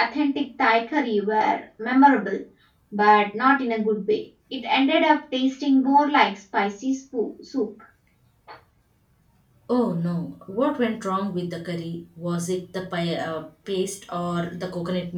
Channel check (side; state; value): both; identical; correlation 1.00